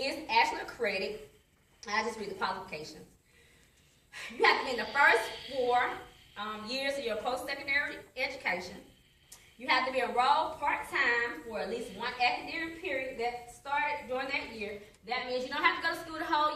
actually a credit. I'll just read the qualifications. You have to be in the first 4 years of your post-secondary education. You have to be enrolled part-time for at least one academic period that started during that year. That means you don't have to go to school the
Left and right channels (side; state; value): both; identical; correlation 1.00